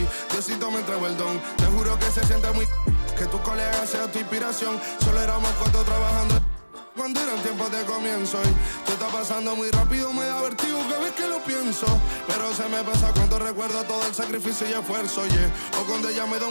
Diosito me entregó el don. Te juro que se siente muy que tus colegas sean tu inspiración. Solo éramos cuatro trabajando cuando eran tiempos de comienzo. Y tú está pasando muy rápido, me da vertigo cada vez que lo pienso. Pero se me pasa cuando recuerdo todo el sacrificio y esfuerzo, o cuando ella me da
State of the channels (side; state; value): both; inverted; correlation -1.00